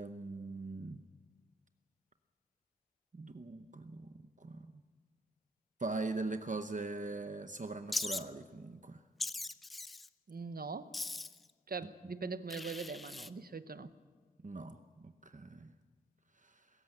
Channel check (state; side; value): normal; both; correlation 0.67